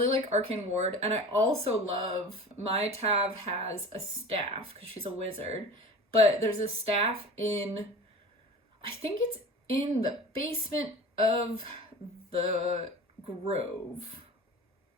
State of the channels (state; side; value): normal; both; correlation 0.37